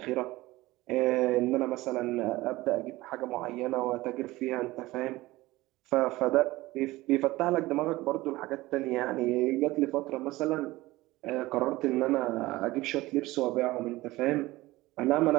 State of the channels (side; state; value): left; quieter; 18.9 dB